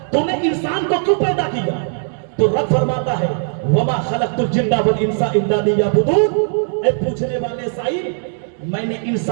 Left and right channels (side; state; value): left; silent; digital silence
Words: تو نے انسان کو کیوں پیدا کیا؟ تو رب فرماتا ہے وما خلقت الجن والانس الا لیعبدون۔ اے پوچھنے والے سائل، میں نے